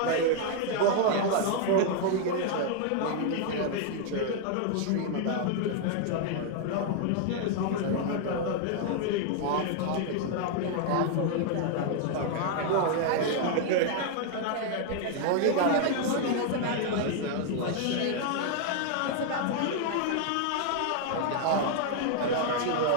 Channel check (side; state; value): both; different; correlation 0.00